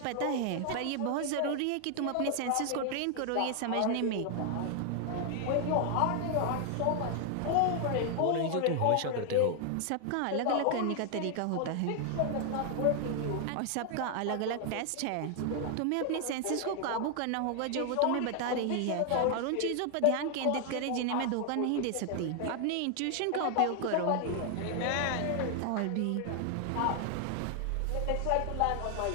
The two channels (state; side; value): different; both; correlation 0.00